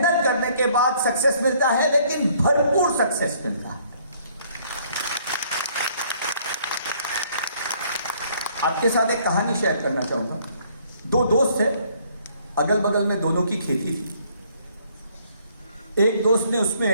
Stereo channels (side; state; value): both; inverted; correlation -0.63